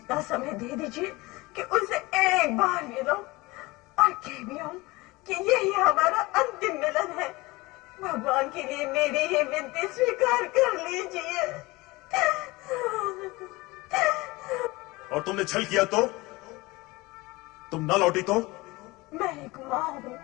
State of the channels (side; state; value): right; quieter; 22.0 dB